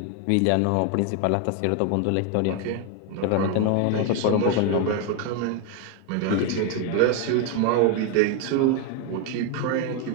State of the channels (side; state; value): both; different; correlation 0.01